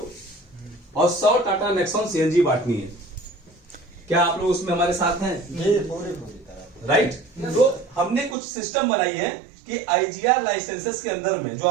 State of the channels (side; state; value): left; drops out; at 8.3 s